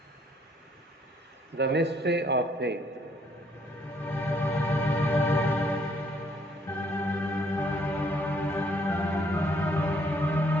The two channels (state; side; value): normal; both; correlation 0.66